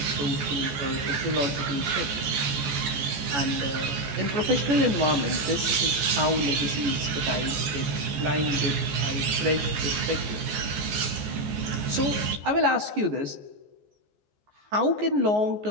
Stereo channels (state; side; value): late; left; 14 ms